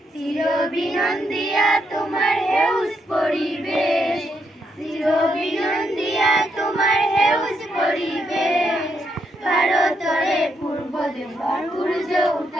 চির বিনন্দিয়া তোমার হেউজ পরিবেশ চির বিনন্দিয়া তোমার হেউজ পরিবেশ ভারতরে পূর্ব দেশর সূর্য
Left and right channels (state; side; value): normal; both; correlation 0.78